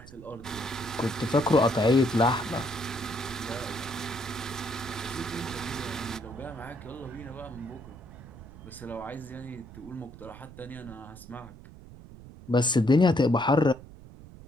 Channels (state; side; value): noise; right; rumble, 17 dB below the sound